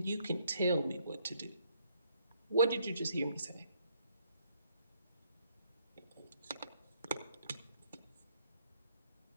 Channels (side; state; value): both; inverted; correlation -0.70